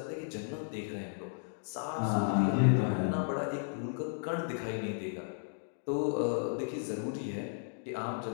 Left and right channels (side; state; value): right; silent; digital silence